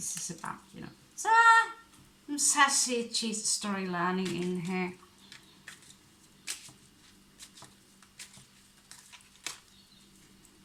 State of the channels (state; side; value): identical; both; correlation 1.00